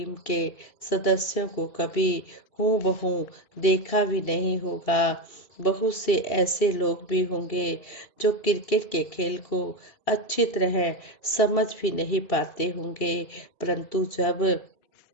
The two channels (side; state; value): right; late; 2.8 ms